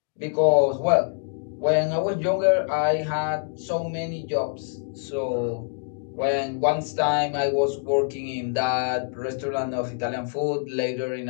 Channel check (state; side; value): silent; right; digital silence